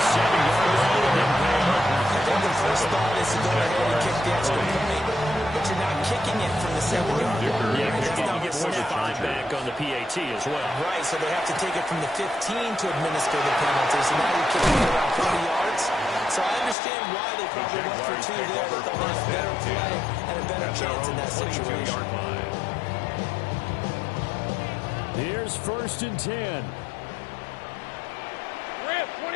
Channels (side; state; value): right; drops out; at 16.8 s